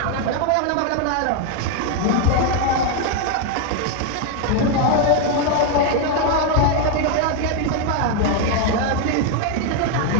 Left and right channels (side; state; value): both; different; correlation 0.01